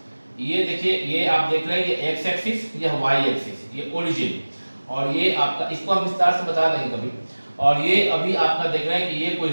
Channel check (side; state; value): both; inverted; correlation -1.00